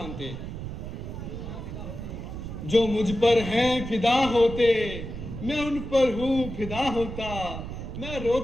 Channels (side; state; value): right; noise; rumble, 8 dB below the sound